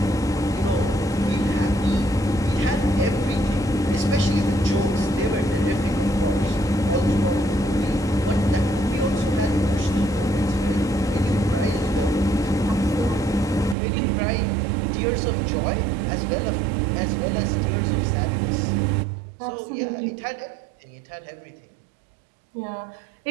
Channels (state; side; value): drops out; left; at 13.8 s